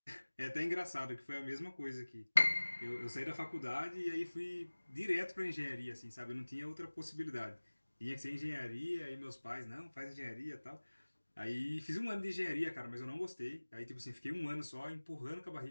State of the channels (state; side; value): inverted; both; correlation -1.00